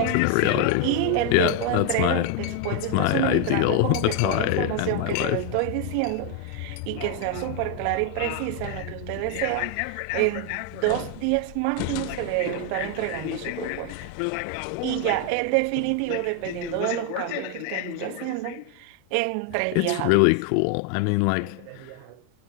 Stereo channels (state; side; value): different; both; correlation 0.01